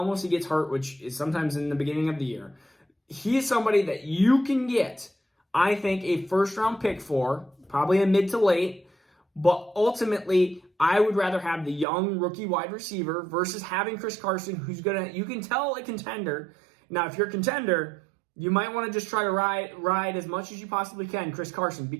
he gets hurt, which is sometimes in the beginning of the year. He is somebody that you can get, I think, a first-round pick for, probably a mid to late, but ultimately, I would rather have the young rookie wide receiver versus having Chris Carson, who's you can tell a contender. Now, if you're a contender, you might want to just try to ride as much as you possibly can Chris Carson,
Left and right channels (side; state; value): left; drops out; at 11.9 s